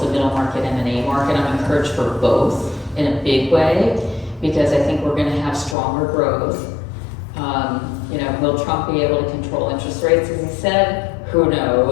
the middle market M&A market. I'm encouraged for both in a big way because I think we're going to have stronger growth. Will Trump be able to control interest rates, as he said? Who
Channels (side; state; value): right; drops out; at 5.8 s